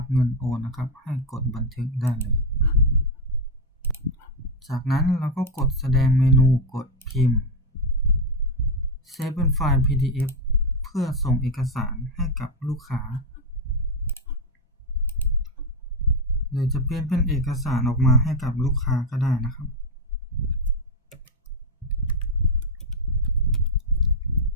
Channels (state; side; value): normal; both; correlation 0.06